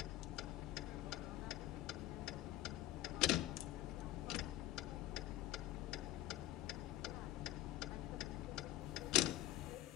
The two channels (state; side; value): quieter; right; 15.0 dB